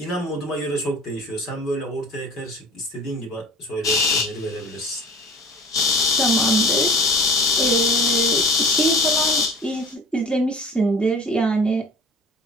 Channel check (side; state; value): both; normal; correlation 0.41